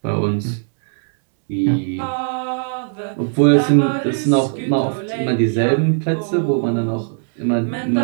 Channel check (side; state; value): left; silent; 67 dB below the other